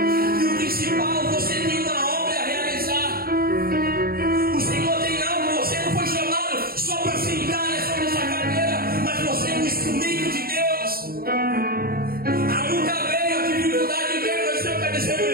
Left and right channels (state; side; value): late; left; 0.43 ms